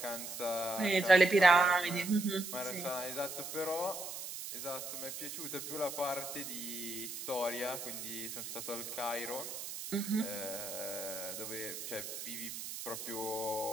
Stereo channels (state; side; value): noise; right; hiss, 7 dB below the sound